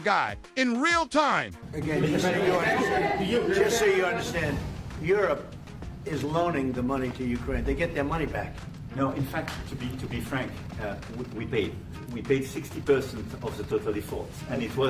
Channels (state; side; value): identical; both; correlation 1.00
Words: in real time. Again, just so you understand, Europe is loaning the money to Ukraine. They get their money back. No, in fact, to be frank, we paid 60% of the total effort, and it